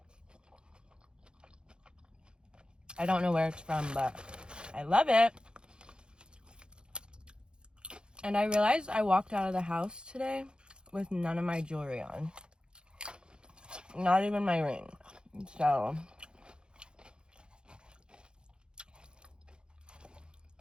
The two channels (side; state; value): left; late; 0.050 ms